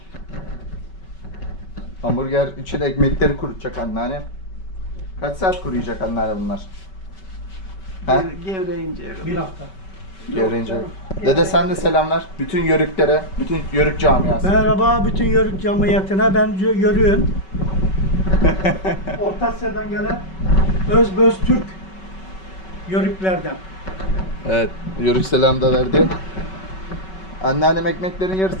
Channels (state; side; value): late; right; 5.3 ms